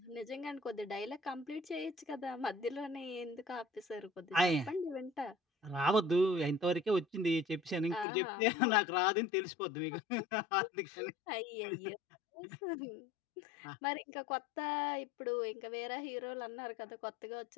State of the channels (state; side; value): drops out; right; at 8.1 s